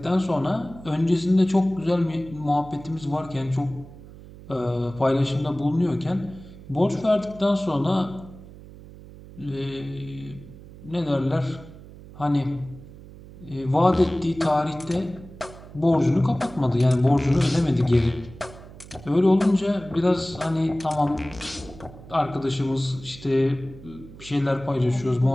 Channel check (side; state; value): right; noise; hum, 18 dB below the sound